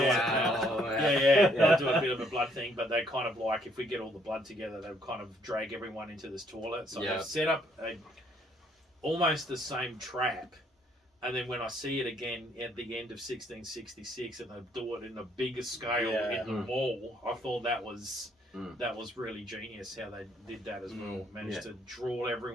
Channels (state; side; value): normal; both; correlation 0.67